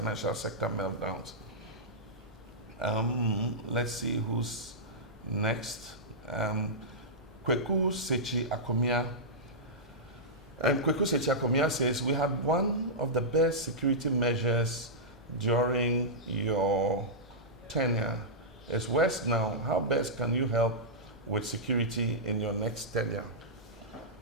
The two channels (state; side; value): normal; both; correlation -0.12